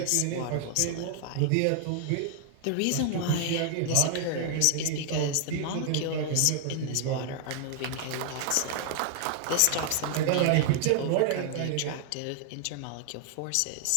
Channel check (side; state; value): both; different; correlation 0.00